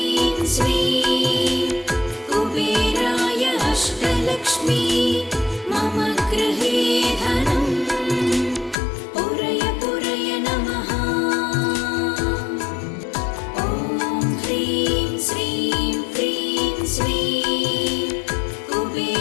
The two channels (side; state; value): right; drops out; at 8.8 s